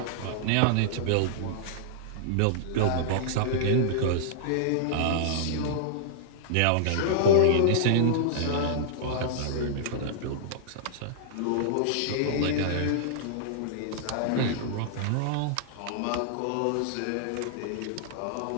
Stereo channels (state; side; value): different; both; correlation -0.01